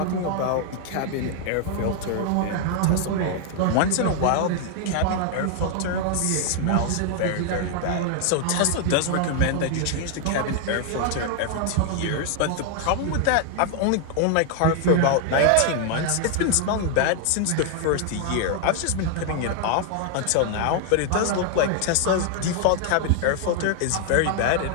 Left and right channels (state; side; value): different; both; correlation 0.00